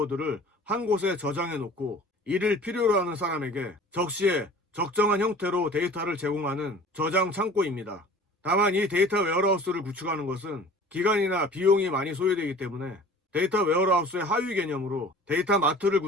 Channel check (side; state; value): both; normal; correlation 0.44